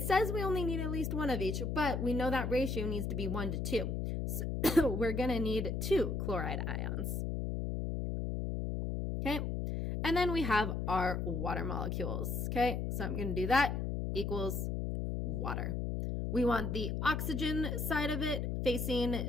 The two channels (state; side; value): noise; left; hum, 1 dB below the sound